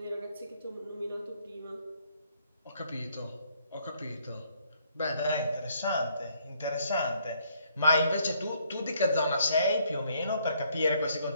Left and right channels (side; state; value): both; inverted; correlation -0.68